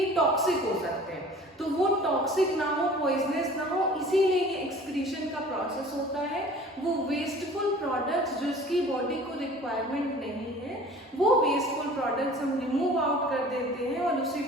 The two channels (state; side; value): normal; both; correlation 0.46